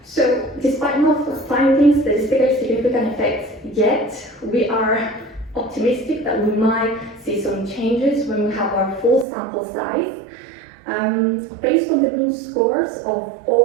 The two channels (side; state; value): left; drops out; at 9.2 s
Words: So despite not finding statistically significant effects yet, we are optimistic that we might see some changes when we have our full sample size. Based on the mean scores of